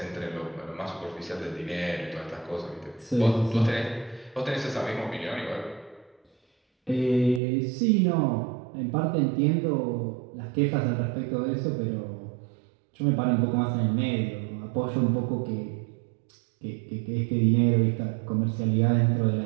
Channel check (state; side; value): drops out; left; at 7.4 s